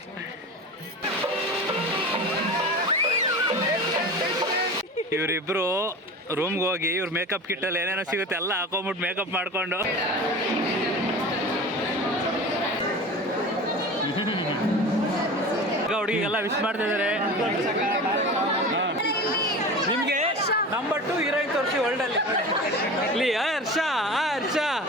ಇವರಿಬ್ರು ರೂಮ್ಗೆ ಹೋಗಿ ಇವ್ರ ಮೇಕಪ್ ಕಿಟ್ಟಲ್ಲಿ ಏನೇನೋ ಸಿಗುತ್ತೆ ಎಲ್ಲ ಹಾಕೊಂಬಿಟ್ಟು ಮೇಕಪ್ ಮಾಡಿಕೊಂಡು ಹುಡುಗಿಗೆಲ್ಲ ವಿಶ್ ಮಾಡ್ತಾ ಇದ್ದಾರೆ. ನಿಮಗೆ ನಂಬರ್ 2 ಹೀರೋಯಿನ್ ತೋರಿಸಿ ವರ್ಲ್ಡಲ್ಲಿ. ಇಲ್ಲಿ ಹರ್ಷ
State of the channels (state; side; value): normal; both; correlation 0.33